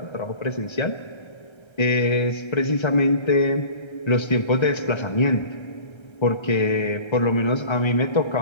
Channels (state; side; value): late; right; 1.3 ms